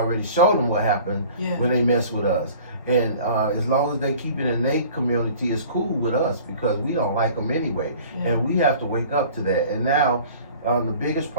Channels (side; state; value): both; inverted; correlation -0.46